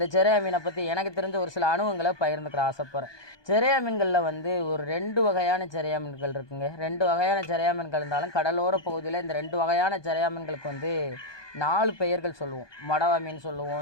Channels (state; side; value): late; right; 1.2 ms